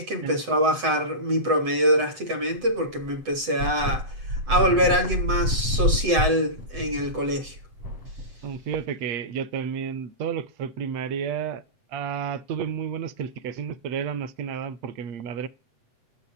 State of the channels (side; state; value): left; late; 7.9 ms